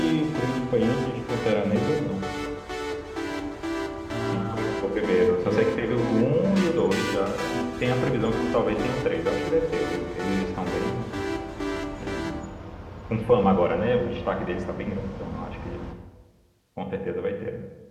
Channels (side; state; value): both; identical; correlation 1.00